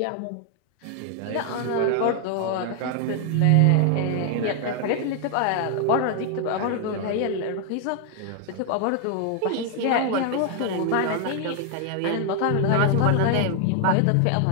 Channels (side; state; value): both; different; correlation 0.00